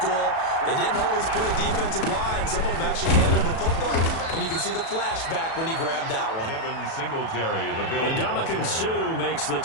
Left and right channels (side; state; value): right; late; 37 ms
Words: They didn't always play defensive line. Some of them actually handled the football, and you can see the flashback when he grabbed that one. Devin Singletary, the Bills. And Ndamukong Suh makes the